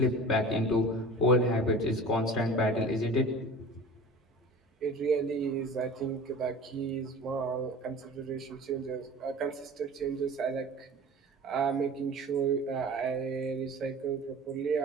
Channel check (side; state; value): both; normal; correlation 0.39